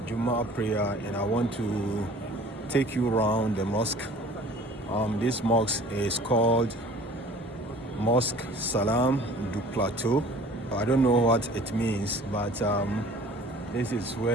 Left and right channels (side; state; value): both; normal; correlation 0.48